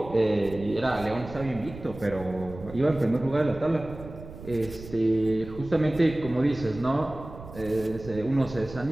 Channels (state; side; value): noise; right; rumble, 14 dB below the sound